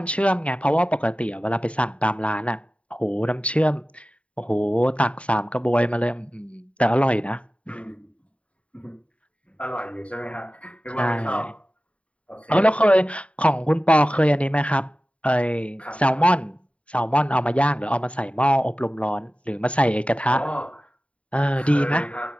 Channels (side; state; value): right; late; 0.064 ms